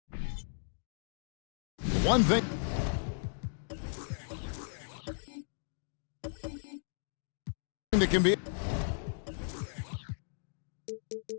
one thing that can be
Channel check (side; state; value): right; silent; digital silence